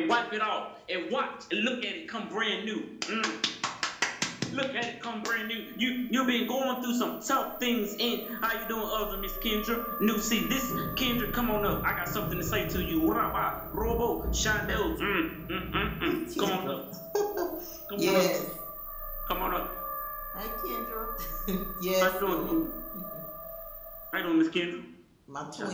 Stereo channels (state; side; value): identical; both; correlation 1.00